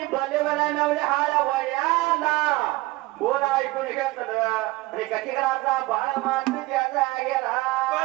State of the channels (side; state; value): left; quieter; 20.5 dB